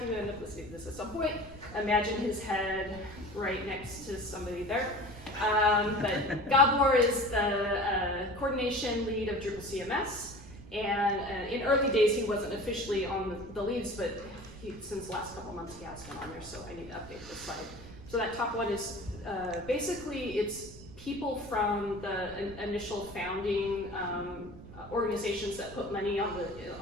you end up listening to this at some point, imagine his head right next to somebody there. But Gabor is the coordination lead of Drupal CMS, and in early days he wasn't officially on the leads, but since the last couple months he has been on there, so I need to update this slide. So that top one is basically it's people from the initial founding organizations that put money on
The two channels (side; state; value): right; noise; rumble, 16 dB below the sound